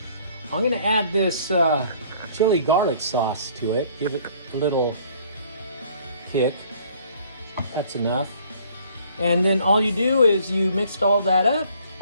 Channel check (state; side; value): inverted; both; correlation -0.58